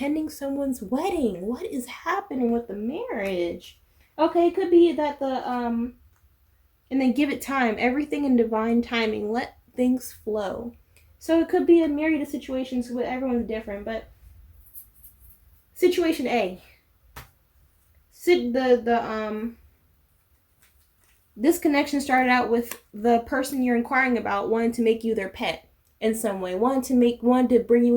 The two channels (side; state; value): both; identical; correlation 1.00